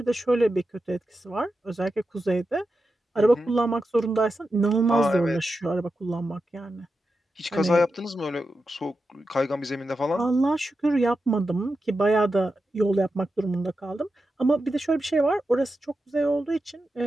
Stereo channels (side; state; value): both; normal; correlation 0.90